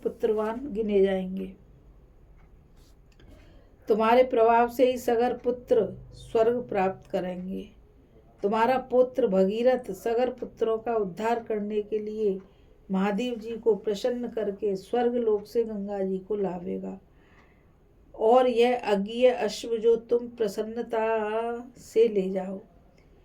पुत्रवान गिने जाएंगे। तुम्हारे प्रभाव से ही सगर पुत्र स्वर्ग प्राप्त करेंगे। तुम्हारा पुत्र भगीरथ सगर पुत्रों का उद्धार करने के लिए महादेव जी को प्रसन्न करके स्वर्ग लोक से गंगा जी को लावेगा। और यह अज्ञेय अश्व जो तुम प्रसन्नता से ले जाओ।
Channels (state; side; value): identical; both; correlation 1.00